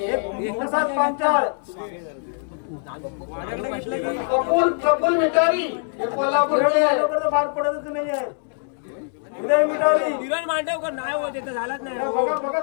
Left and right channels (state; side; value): silent; right; digital silence